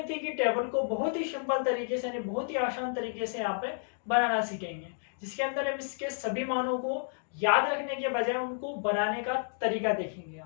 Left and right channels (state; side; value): silent; right; digital silence